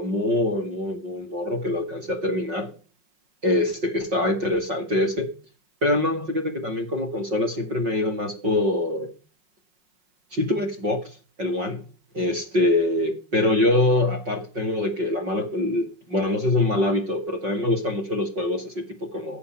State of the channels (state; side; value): late; left; 5.4 ms